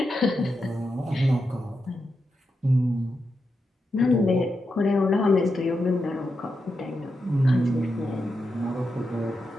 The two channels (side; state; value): both; normal; correlation 0.87